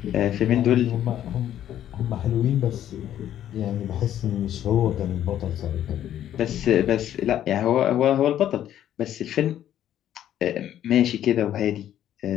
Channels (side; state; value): right; quieter; 11.3 dB